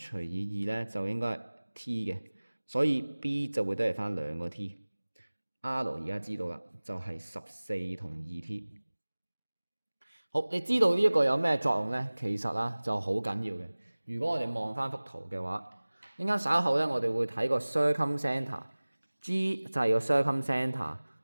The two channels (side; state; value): both; inverted; correlation -1.00